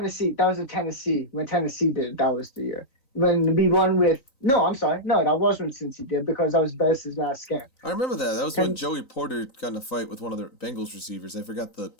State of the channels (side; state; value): right; late; 3.9 ms